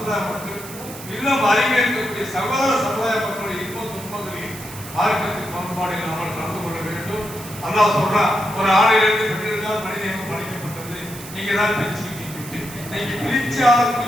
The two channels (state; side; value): noise; right; hiss, 14 dB below the sound